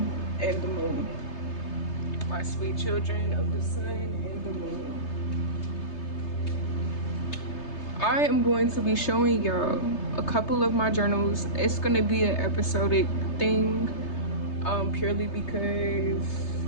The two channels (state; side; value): late; right; 3.3 ms